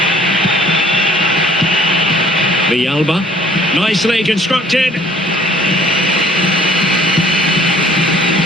Villalba, nicely constructed.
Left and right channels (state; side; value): normal; both; correlation 0.55